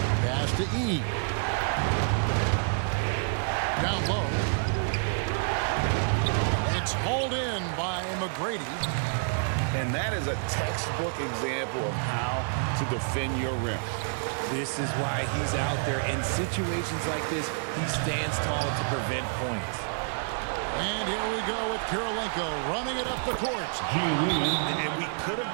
Pass to E. Down low. It's hauled in by McGrady. And that is a textbook example of how to defend your rim. This is why he's out there. In situations like this, he stands tall to prevent points. And here we go with Kirilenko running it up the court. And we could have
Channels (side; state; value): left; silent; 59 dB below the other